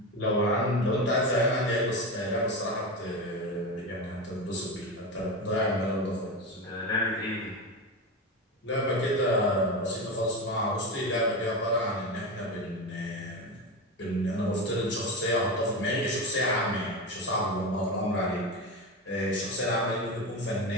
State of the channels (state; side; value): normal; both; correlation 0.20